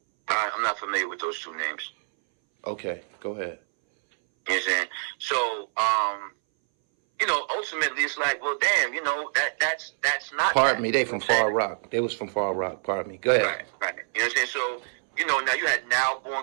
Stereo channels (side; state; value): left; silent; 60 dB below the other